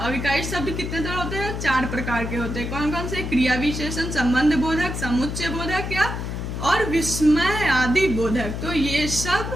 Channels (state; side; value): noise; left; hum, 5 dB below the sound